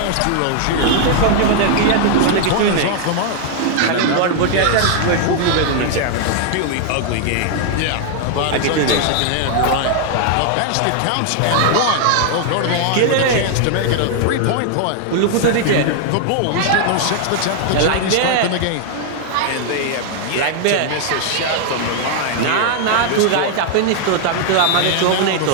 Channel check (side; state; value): both; different; correlation 0.00